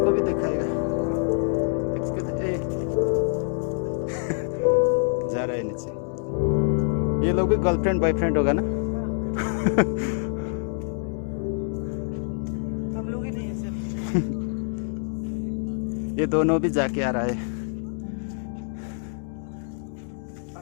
को भी दिखाएगा जा रहा है नीचे। ये लोग भी गर्लफ्रेंड बॉयफ्रेंड होगा ना? हम लोग ही नहीं ऐसे। ये दोनों भी जाके आ रहा है।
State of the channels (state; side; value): silent; right; 59 dB below the other